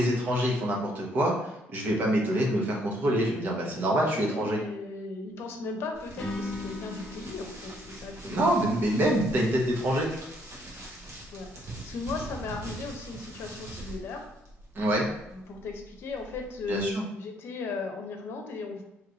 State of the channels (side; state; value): both; normal; correlation 0.68